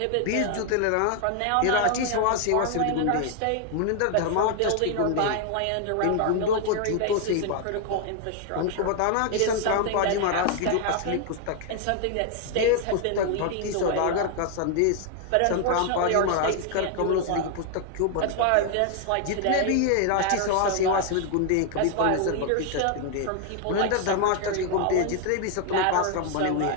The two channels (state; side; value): different; both; correlation 0.00